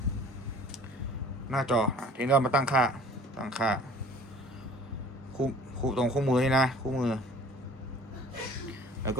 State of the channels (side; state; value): both; normal; correlation 0.47